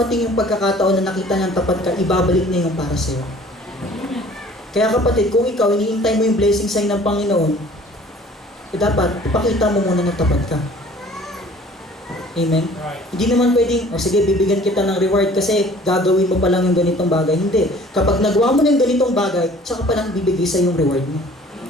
yung pagkakataon na nakita niyang tapat ka, ibabalik niya yung para sa iyo. Kaya kapatid, kung ikaw hinihintay mo yung blessing sa'yo ng Panginoon, dapat ipakita mo muna na tapat ka. Amen? Right. Hindi naman pwedeng, sige, bibigyan kita ng reward kasi gagawin mo pa lang yung ganitong bagay. Hindi. Kapag nagawa mo ng ganitong bagay, tsaka pa lang bibigay sa yung reward mo.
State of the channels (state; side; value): normal; both; correlation 0.51